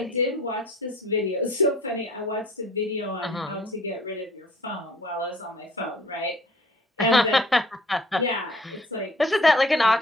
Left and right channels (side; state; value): both; normal; correlation 0.52